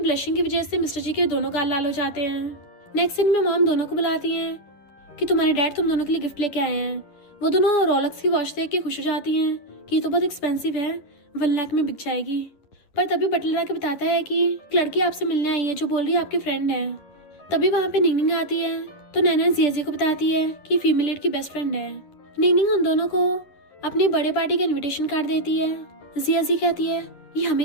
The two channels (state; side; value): late; right; 10 ms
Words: की वजह से मिस्टर जी के दोनों गाल लाल हो जाते हैं। नेक्स्ट सीन में मॉम दोनों को बुलाती हैं कि तुम्हारे डैड तुम दोनों के लिए गिफ्ट लेके आए हैं। वो दोनों रोलेक्स की वॉच देख के खुश हो जाती हैं कि ये तो बहुत एक्सपेंसिव है, 1 लाख में बिक जाएगी। पर तभी बटलर आके बताता है कि एक लड़की आपसे मिलने आई है जो बोल रही है आपकी फ्रेंड है। तभी वहाँ पे निंगनिंग आती है तो नैना जिया को बताती है कि फीमेल लीड की बेस्ट फ्रेंड है। निंगनिंग उन दोनों को अपनी बर्थडे पार्टी का इन्विटेशन कार्ड देती है। जिया कहती है ये